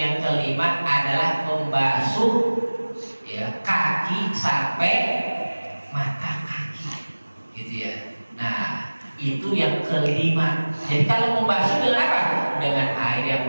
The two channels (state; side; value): inverted; both; correlation -1.00